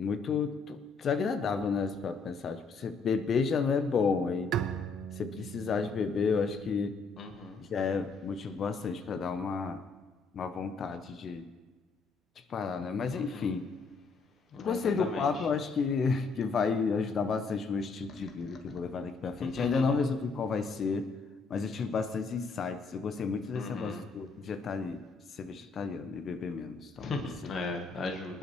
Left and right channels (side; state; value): right; quieter; 4.4 dB